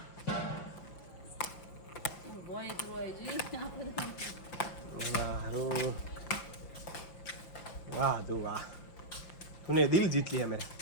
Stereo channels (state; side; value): late; right; 5.8 ms